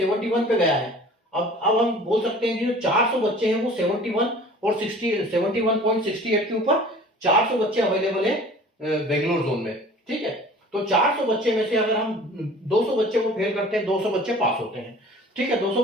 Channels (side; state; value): both; normal; correlation 0.46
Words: पे गया है। अब हम बोल सकते हैं कि जो 400 बच्चे हैं वो 71 और 71.68 के ऊपर 400 बच्चे अवेलेबल है बेंगलोर जोन में। ठीक है, तो 400 बच्चे में से अगर हम 200 बच्चे को फेल करते हैं, 200 बच्चे पास होते हैं। ठीक है, 200